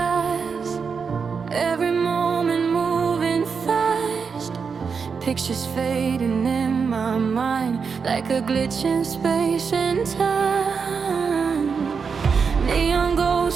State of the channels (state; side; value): quieter; left; 5.7 dB